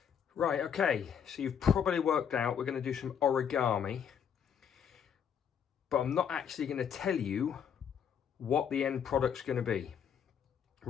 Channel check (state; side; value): quieter; right; 7.9 dB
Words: Right, okay, so you've probably worked out we're going to do some origami, but I'm not actually going to tell you what the end product's going to be.